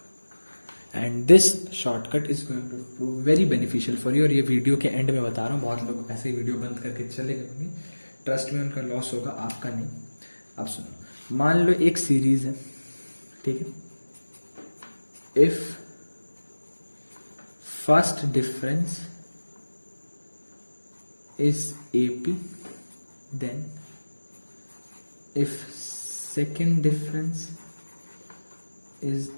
and this shortcut is going to prove very beneficial for you. और ये video के and में बता रहा हूँ, बहुत लोग ऐसे ही वीडियो बंद करके चले गए होंगे, ट्रस्ट में उनका लॉस होगा, आपका नहीं। अब सुनो, मान लो एक सीरीज है, ठीक है, if first difference is AP, then if second difference is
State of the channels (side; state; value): both; inverted; correlation -1.00